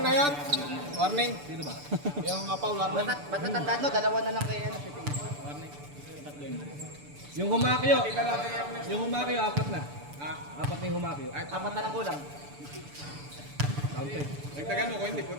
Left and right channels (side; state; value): left; late; 6.9 ms